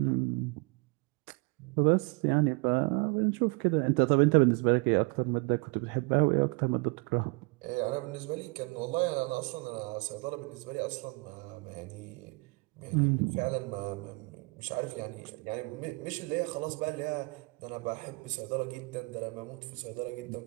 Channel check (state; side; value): quieter; left; 28.8 dB